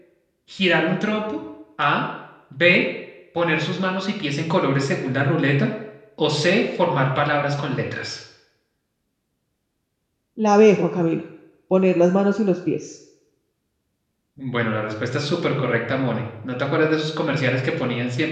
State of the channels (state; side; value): identical; both; correlation 1.00